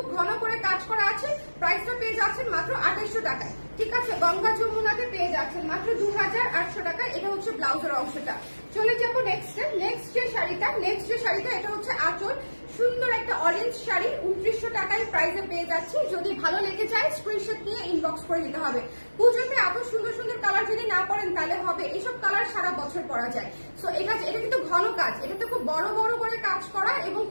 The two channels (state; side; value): inverted; both; correlation -1.00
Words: ঘন করে কাজ করা আছে। প্রাইসটা পেয়ে যাচ্ছেন মাত্র 2800 টাকায়, ঠিক আছে। গঙ্গা যমুনাতে পেয়ে যাচ্ছেন মাত্র 2800 টাকায়। এটা হচ্ছে ব্লাউজের অংশটা। চলে যাবো নেক্সট যে শাড়িটা, এটা হচ্ছে আঁচল, সুন্দর একটা অরেঞ্জ শাড়ি, 2900 টাকায় প্রাইসে পেয়ে যাচ্ছি। যদি ভালো লেগে যায় স্ক্রিনশট নিয়ে ইনবক্স করে দিতে হবে। পুজোতে এত সুন্দর সুন্দর কালার যদি না পরেন তাহলে হবে, এইসব কালার সারা বছর পরা যায়। সো এটা কিন্তু ঘন কাজ, এটাতে খুব বড় বড় করে কাজ করা এবং